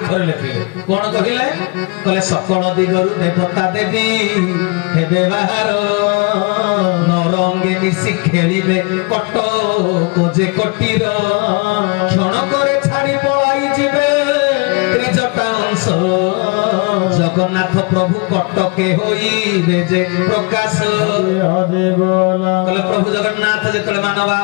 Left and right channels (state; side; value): quieter; right; 30.0 dB